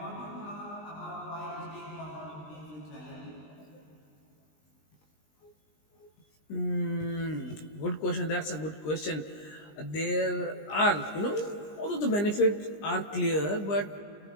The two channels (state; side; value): late; right; 20 ms